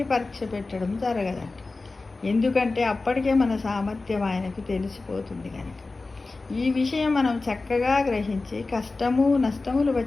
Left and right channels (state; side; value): quieter; right; 3.6 dB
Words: పరీక్ష పెట్టడం జరగదంట. ఎందుకంటే అప్పటికే మన సామర్థ్యం ఆయనకు తెలిసిపోతుంది కనుక. ఈ విషయం మనం చక్కగా గ్రహించి కష్టము నష్టములు